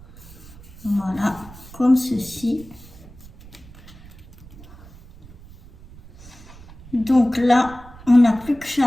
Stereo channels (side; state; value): right; noise; rumble, 20 dB below the sound